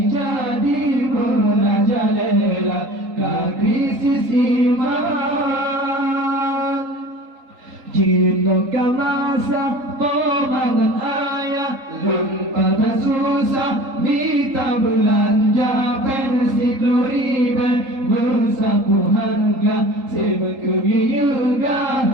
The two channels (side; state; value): left; late; 3.8 ms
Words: merajalela ke krisis iman. Jino kau rasa pomangan ayah, lempatan susah minta belanja, pensi kloriben bersaku harga,